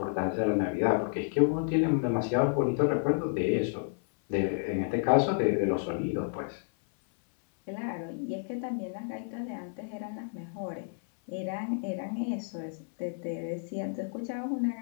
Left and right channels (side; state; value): right; silent; 57 dB below the other